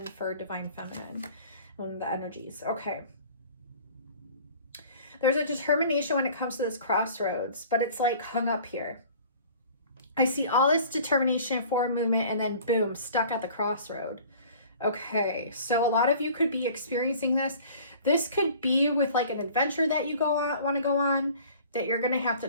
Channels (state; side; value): inverted; both; correlation -0.48